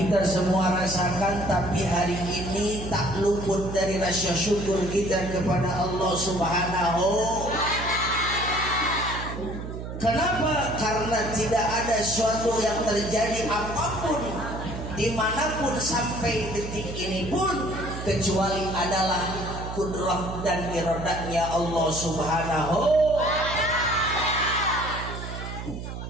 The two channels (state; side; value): noise; right; hum, 8 dB below the sound